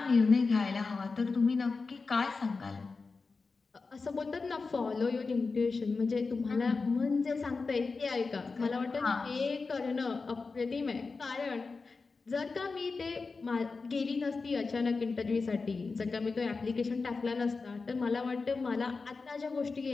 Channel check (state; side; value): quieter; right; 4.3 dB